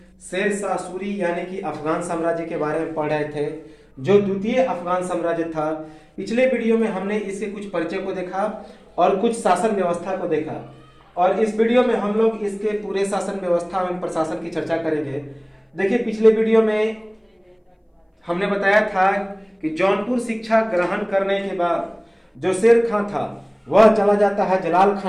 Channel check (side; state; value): both; identical; correlation 1.00